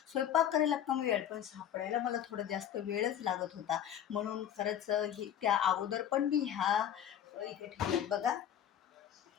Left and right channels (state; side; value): quieter; right; 10.1 dB